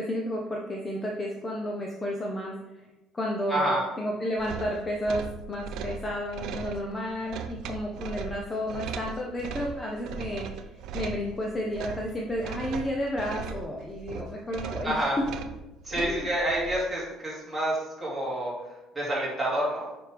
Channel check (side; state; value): both; normal; correlation 0.69